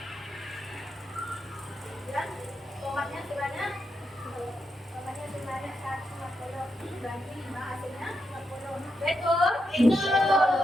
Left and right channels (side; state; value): both; normal; correlation 0.84